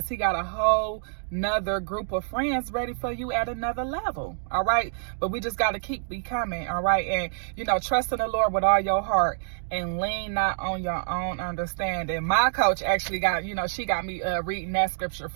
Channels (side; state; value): left; silent; digital silence